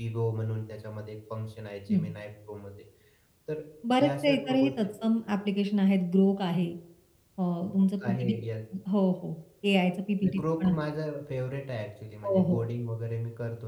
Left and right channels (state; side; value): identical; both; correlation 1.00